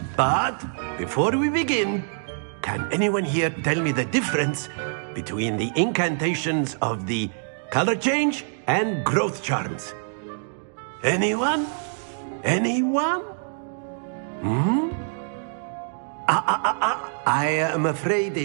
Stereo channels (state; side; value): silent; left; digital silence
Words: But before we begin, can anyone here tell me the difference between the incantations of the color change and growth charms? Anyone? Anyone? I am afraid